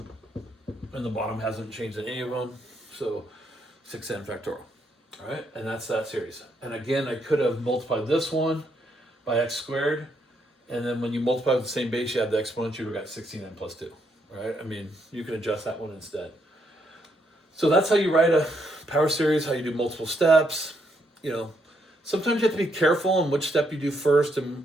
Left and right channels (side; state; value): both; normal; correlation 0.76